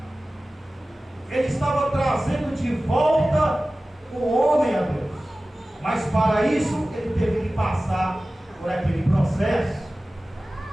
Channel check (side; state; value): both; normal; correlation 0.96